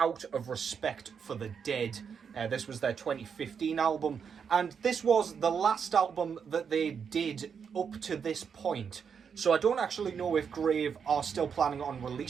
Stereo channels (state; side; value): quieter; left; 6.7 dB